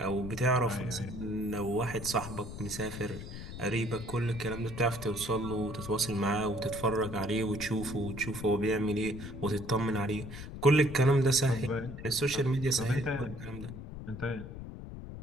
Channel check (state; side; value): noise; left; rumble, 10 dB below the sound